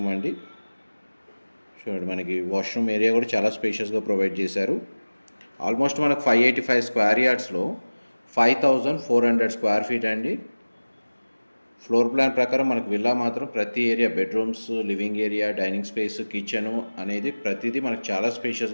అండి. చూడండి, మనకి వాష్రూమ్ ఏరియా కూడా చాలా స్పేషియస్గా ప్రొవైడ్ చేశారు. ఆల్మోస్ట్ మనకు 585 స్క్వేర్ యార్డ్స్లో 5400 స్క్వేర్ ఫీట్ అండి. ఫ్లోర్ ప్లాన్ ప్రకారం మనకు విల్లా మాత్రం ప్రతి area bedrooms, living area, dining space, kitchen అనేది ప్రతిదీ మనకు చాలా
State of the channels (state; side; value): inverted; both; correlation -1.00